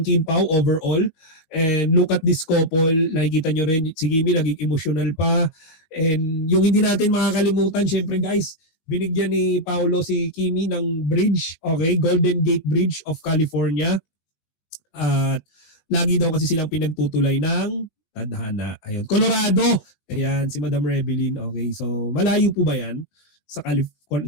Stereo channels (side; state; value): right; late; 19 ms